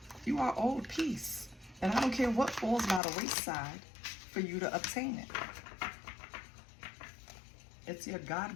You are owed peace. And I don't care what falls by the wayside for you to obtain it. It's your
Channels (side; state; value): right; drops out; at 3.0 s